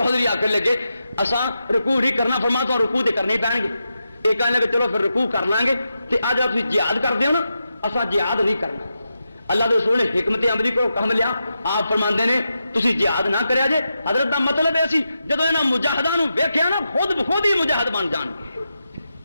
آ کر لگے اساں رکوع نہیں کرنا فرما تو رکوع تے کرنے پین گے یہ کہنے لگے چلو پھر رکوع کر لیں گے کہ اج آپ جہاد کر دیو نا اساں جہاد نہیں کرنا اللہ کے رسول نے حکمت عملی کو کم لیا آپ فرماندے نے تسی جہاد نہ کریا جے حضرت دا مطلب ہے سی جدوں انہاں مجاہداں نو ویکھیا نا خود بخود ہی مجاہد بن جان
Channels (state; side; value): inverted; both; correlation -0.88